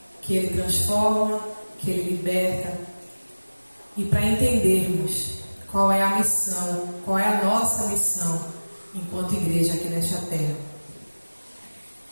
que Ele transforma, que Ele liberta. E para entendermos qual é a missão, qual é a nossa missão enquanto igreja aqui nesta terra.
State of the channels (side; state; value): both; inverted; correlation -1.00